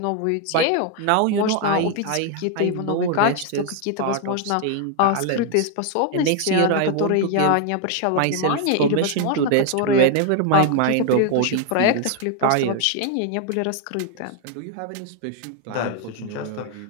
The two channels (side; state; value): both; different; correlation 0.01